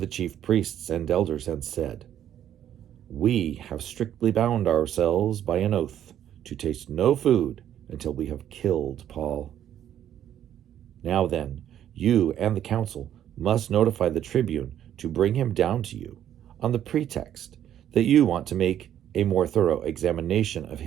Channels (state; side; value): quieter; left; 10.6 dB